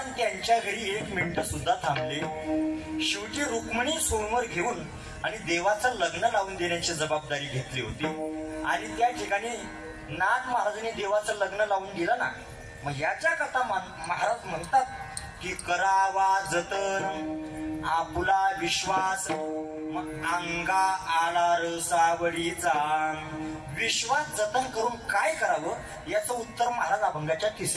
त्यांच्या घरी 1 मिनिट सुद्धा थांबले. शेवटी रुक्मिणी सोमवार घेऊन आणि देवाचं लग्न लावून देण्याची जबाबदारी घेतली होती. आणि त्या ठिकाणी नाथ महाराजांनी देवाचं लग्न लावून दिलं ना. मग याच्या कथा महाराज म्हणतात की करावा जतन आपुला विश्वास, मग अंगा आला रसावडीचा. विश्वास जतन करून काय करावं याचं उत्तर महाराज अभंगाच्या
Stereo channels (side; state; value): both; identical; correlation 1.00